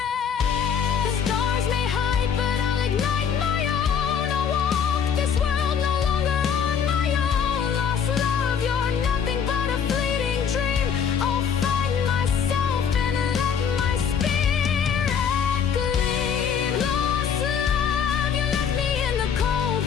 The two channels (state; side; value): quieter; right; 7.3 dB